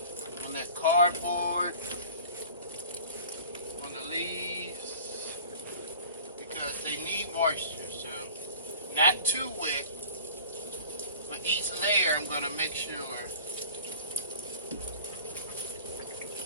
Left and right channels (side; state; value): both; inverted; correlation -0.43